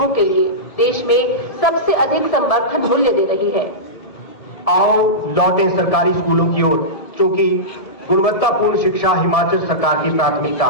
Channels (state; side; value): late; right; 1.7 ms